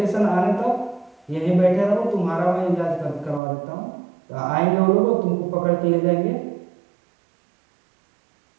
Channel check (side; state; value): left; drops out; at 3.4 s